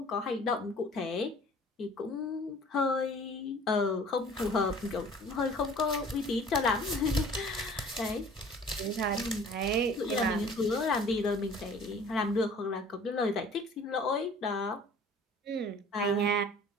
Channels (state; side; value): normal; both; correlation 0.49